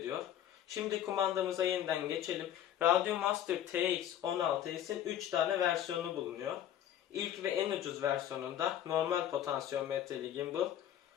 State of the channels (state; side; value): quieter; right; 10.9 dB